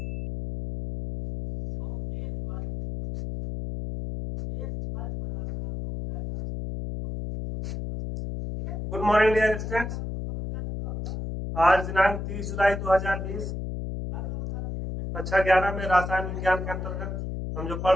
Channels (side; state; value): left; noise; hum, 6 dB below the sound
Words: Good morning dear students. आज दिनांक 30 जुलाई 2020 कक्षा 11 में रसायन विज्ञान के अंतर्गत हम जो